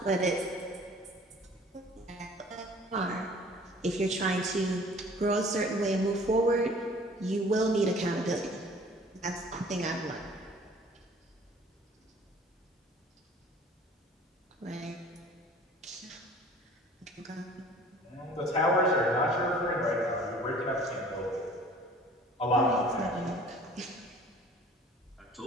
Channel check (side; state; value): both; normal; correlation 0.49